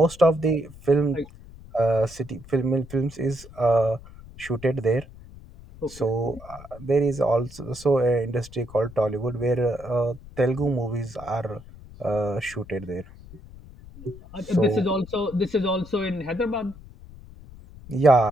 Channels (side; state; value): left; noise; rumble, 18 dB below the sound